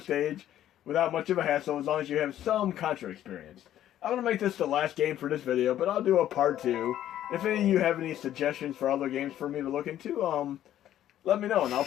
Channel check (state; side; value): quieter; right; 11.9 dB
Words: stage without much of a hassle as long as you have some Contra experience. I'm going to make this the last game for this video, but I'll do a part 2. If any of you have any suggestions for other games for me to look into, let me know and I'll